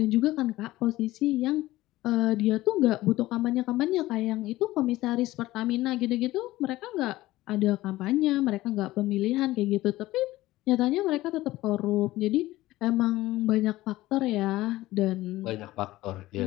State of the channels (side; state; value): right; quieter; 17.1 dB